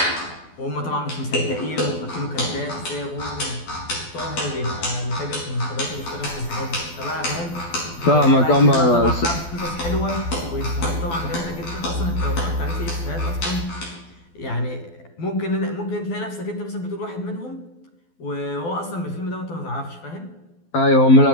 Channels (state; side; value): late; right; 12 ms